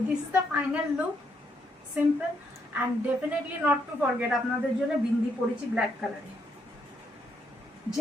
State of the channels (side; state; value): both; normal; correlation 0.75